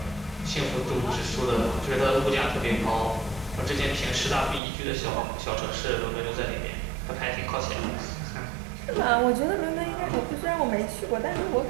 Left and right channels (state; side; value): drops out; left; at 4.6 s